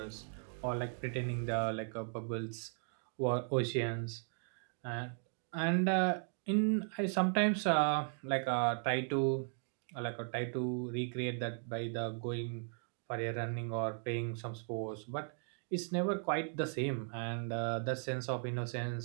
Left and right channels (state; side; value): silent; left; 53 dB below the other